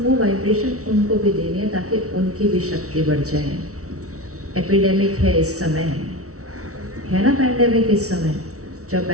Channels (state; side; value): late; left; 0.64 ms